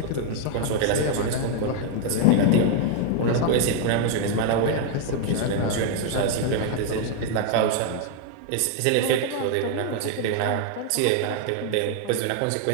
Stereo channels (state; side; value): different; both; correlation 0.00